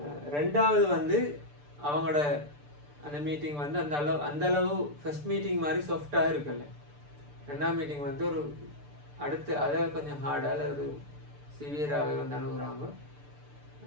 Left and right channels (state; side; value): late; left; 6.8 ms